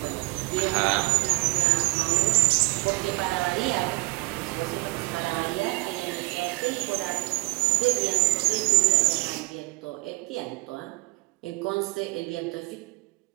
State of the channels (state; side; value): quieter; left; 24.2 dB